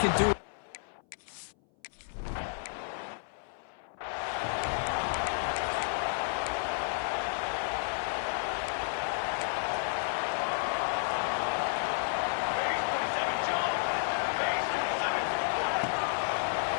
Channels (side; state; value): right; silent; 57 dB below the other